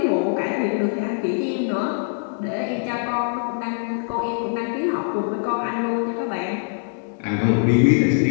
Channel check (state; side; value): silent; right; digital silence